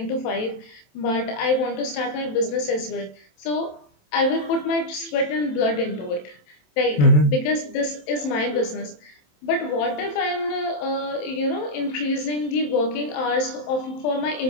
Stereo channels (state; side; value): late; right; 27 ms